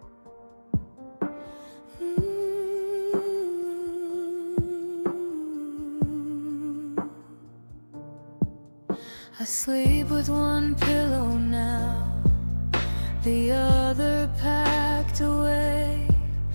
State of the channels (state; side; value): inverted; both; correlation -1.00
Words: I sleep with one pillow now, the other packed away,